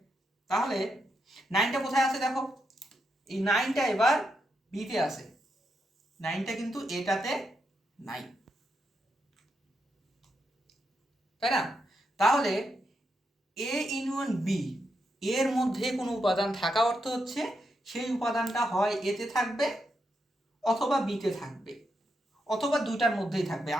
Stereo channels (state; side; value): normal; both; correlation 0.83